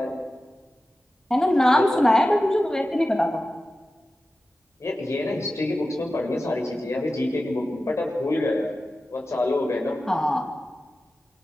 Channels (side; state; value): both; normal; correlation 0.94